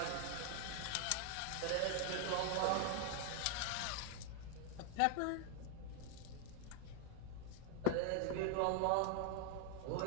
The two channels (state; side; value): different; both; correlation 0.01